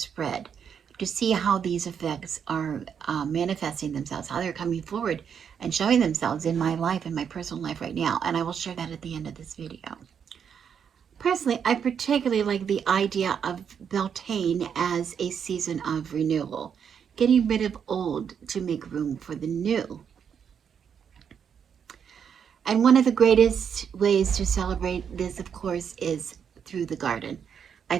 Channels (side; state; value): left; quieter; 7.5 dB